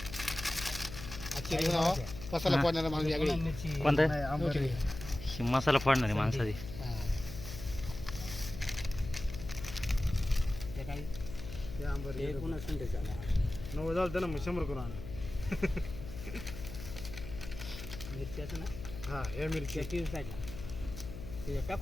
मसाला फोडणारा माणूस वेगळी कोणता मसाला फोडणारी माणसाची काय नव्वद झालं ना मग 100 करून आण मिरच्याचं ना हा हे मिरची ते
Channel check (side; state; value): left; noise; hum, 11 dB below the sound